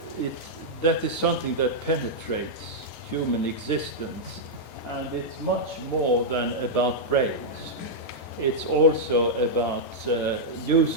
something that penetrates human existence, and it's much more than about brains. It's also about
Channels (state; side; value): normal; both; correlation -0.06